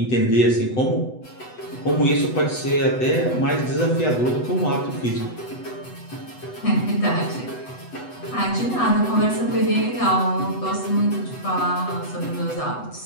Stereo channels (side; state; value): right; late; 8.0 ms